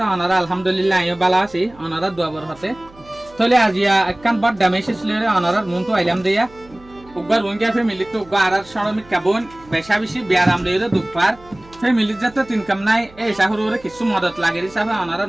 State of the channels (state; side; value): noise; right; hum, 24 dB below the sound